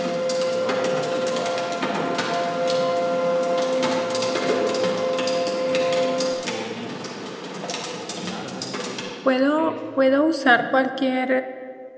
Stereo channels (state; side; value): identical; both; correlation 1.00